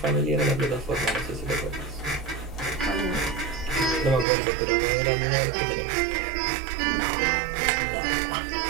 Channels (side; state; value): left; drops out; at 4.2 s